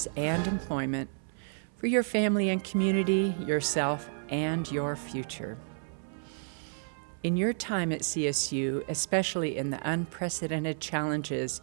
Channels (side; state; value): left; silent; 57 dB below the other